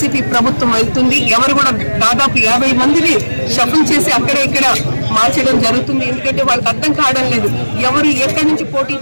ప్రభుత్వం వెళ్తుంది. ఎవరు కూడా దాదాపు 50 మందిని షఫుల్ చేసి అక్కడ ఇక్కడ మార్చడం జరుగుతుంది. ఎందుకంటే వాళ్ళకి అర్థం కావడం లేదు ఎవరు ఎక్కడి నుంచి పోటీ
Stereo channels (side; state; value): both; inverted; correlation -1.00